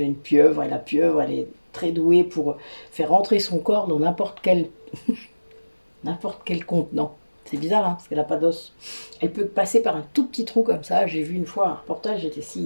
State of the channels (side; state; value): both; inverted; correlation -1.00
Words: une pieuvre, et la pieuvre, elle est très douée pour faire rentrer son corps dans n'importe quel contenant. C'est bizarre, hein, parce qu'elle n'a pas d'os. Elle peut passer par un tout petit trou comme ça. J'ai vu une fois un reportage, j'étais